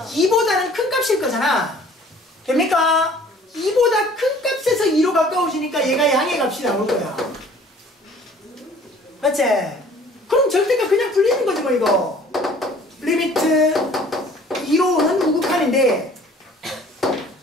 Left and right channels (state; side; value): normal; both; correlation 0.52